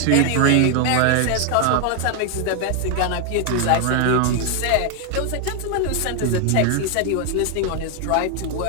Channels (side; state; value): both; different; correlation 0.01